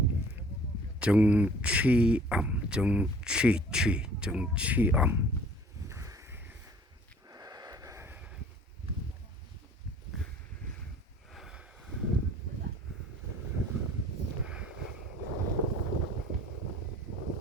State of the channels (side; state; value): both; normal; correlation 0.52